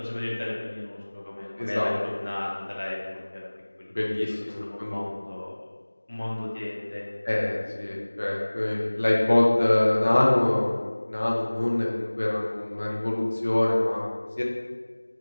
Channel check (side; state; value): both; inverted; correlation -1.00